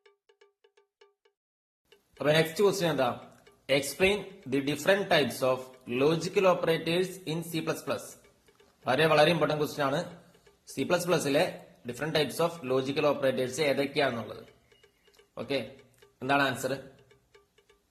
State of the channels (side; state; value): both; identical; correlation 1.00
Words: അപ്പൊ നെക്സ്റ്റ് ക്വസ്റ്റ്യൻ എന്താ? Explain the different types of logical operators in C++. വളരെ ഇമ്പോർട്ടന്റ് ക്വസ്റ്റ്യൻ ആണ്. C++ലെ different types of logical operators ഏതൊക്കെയാണെന്നുള്ളത്. ഓക്കെ, എന്താണ് ആൻസർ?